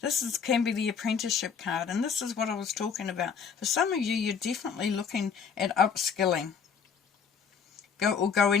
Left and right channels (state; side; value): quieter; right; 6.5 dB